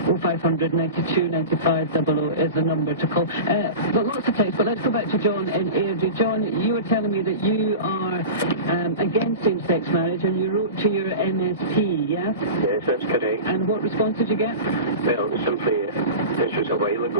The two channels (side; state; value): both; inverted; correlation -0.30